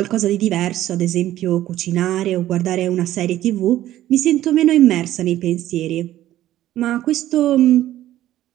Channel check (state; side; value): quieter; left; 13.6 dB